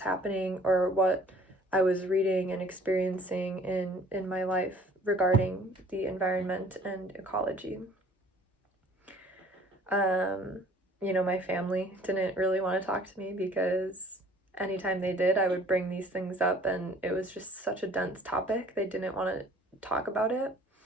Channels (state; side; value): normal; both; correlation 0.53